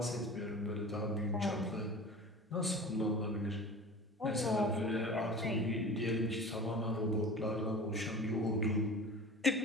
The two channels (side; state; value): both; normal; correlation 0.37